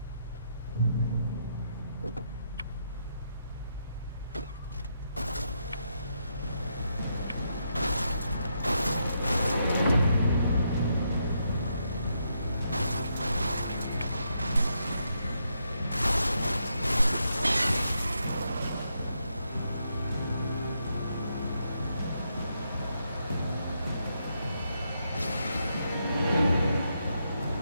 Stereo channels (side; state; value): both; inverted; correlation -0.80